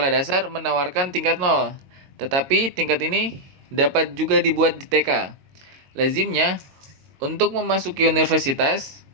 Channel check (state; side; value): late; left; 22 ms